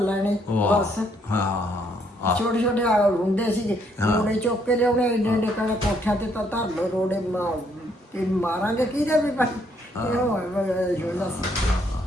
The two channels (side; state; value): both; normal; correlation 0.70